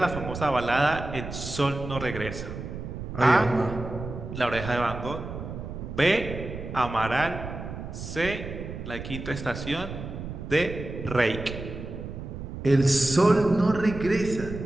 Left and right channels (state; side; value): noise; right; rumble, 8 dB below the sound